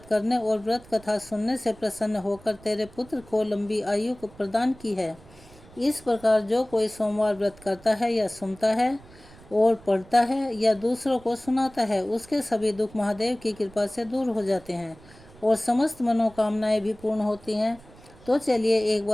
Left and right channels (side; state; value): right; noise; rumble, 23 dB below the sound